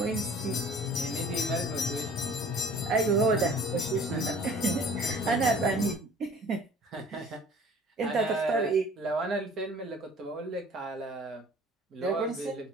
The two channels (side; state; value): both; normal; correlation 0.49